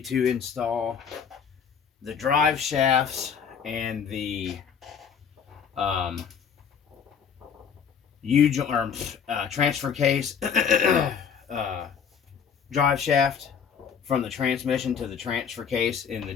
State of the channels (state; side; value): quieter; right; 7.1 dB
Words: install the drive shafts and the transfer case drive shaft from the transmission to the transfer case in the